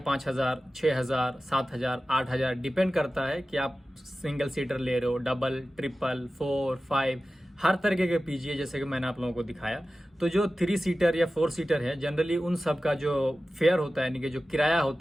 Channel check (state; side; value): normal; both; correlation 0.95